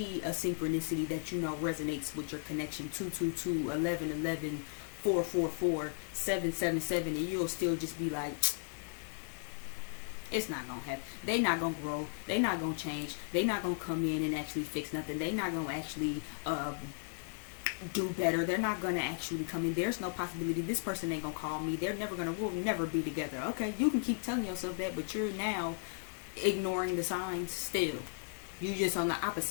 a synchronicity that you know resonates with your connection, 222, 1111, 444, 777, and you'll still just be like, it's not gonna happen. They not gonna grow. They not gonna change. They not gonna come in and actually fix nothing. They not gonna actually do better. They're not gonna actually come in. There's no possibility. This person ain't gonna call me. We'll never be together. Okay, you can keep telling yourself that, but you're now ignoring the signs still. You're just on the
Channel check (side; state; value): right; silent; 54 dB below the other